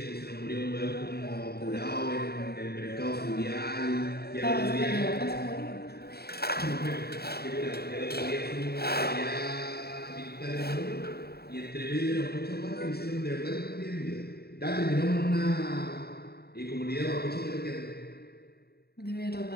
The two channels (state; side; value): late; right; 0.46 ms